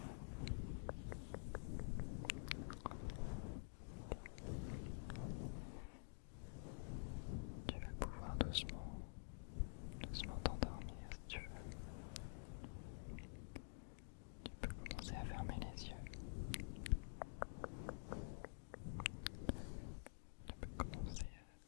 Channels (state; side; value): silent; right; digital silence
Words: Tu vas pouvoir doucement t'endormir si tu veux. Tu peux commencer à fermer les yeux. Tu peux commencer